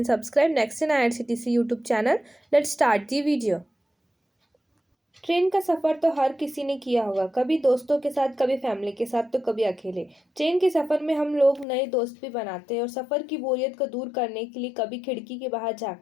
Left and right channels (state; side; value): drops out; right; at 11.7 s